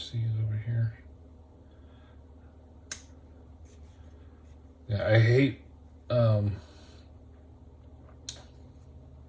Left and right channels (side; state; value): both; identical; correlation 1.00